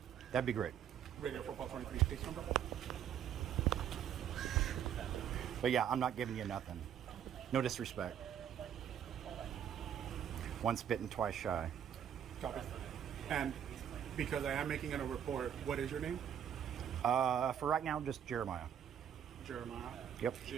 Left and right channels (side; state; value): left; quieter; 9.3 dB